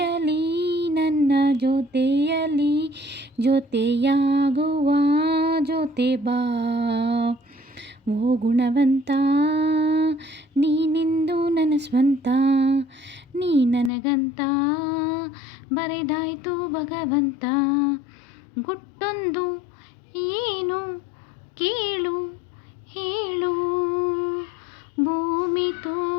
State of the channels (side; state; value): right; drops out; at 13.9 s